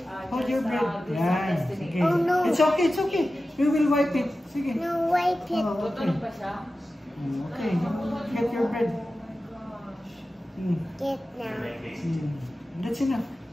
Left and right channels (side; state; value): both; normal; correlation 0.94